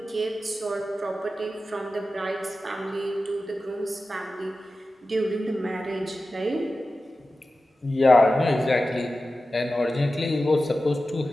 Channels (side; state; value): both; normal; correlation 0.93